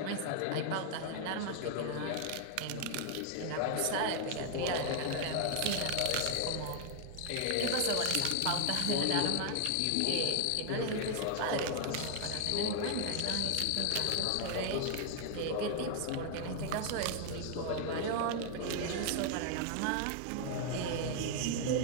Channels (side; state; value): both; different; correlation 0.00